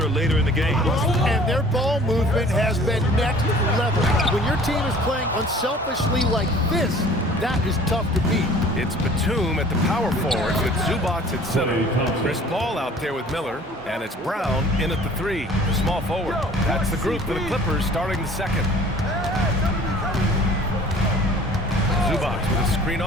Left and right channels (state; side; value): normal; both; correlation 0.50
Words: later in the game. And their ball movement has been next level. When your team is playing unselfishly like this, that is tough to beat. It's Batum at the power forward with Zubac at center. Chris Paul out there with Miller, and it's Brown in at the 3, small forward. That's the group for the Clippers starting the second. Zubac with a screen